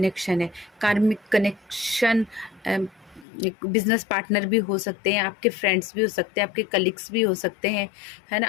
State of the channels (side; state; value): right; drops out; at 3.2 s